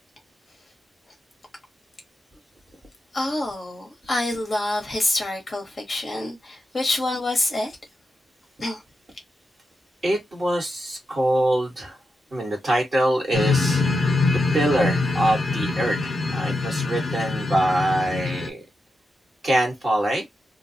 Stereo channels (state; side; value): normal; both; correlation 0.87